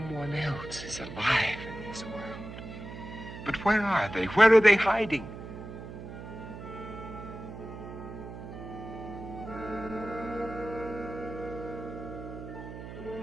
else is alive in this world. But where are they? Where are they hiding?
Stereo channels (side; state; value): right; noise; hum, 11 dB below the sound